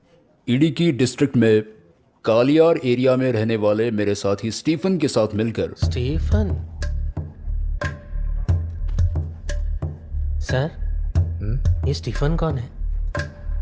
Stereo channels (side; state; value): both; identical; correlation 1.00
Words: इडिकी डिस्ट्रिक्ट में कालियार एरिया में रहने वाले मेरे साथी स्टीफन के साथ मिलकर। स्टीफन? सर, ये स्टीफन कौन है?